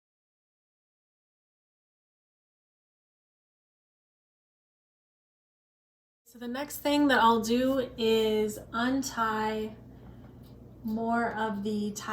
So the next thing that I'll do is untie more of the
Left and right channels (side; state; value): both; identical; correlation 1.00